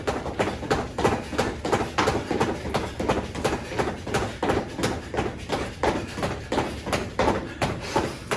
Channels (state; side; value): identical; both; correlation 1.00